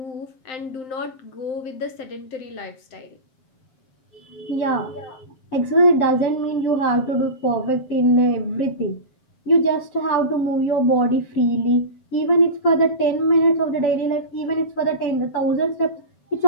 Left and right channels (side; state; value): right; late; 7.6 ms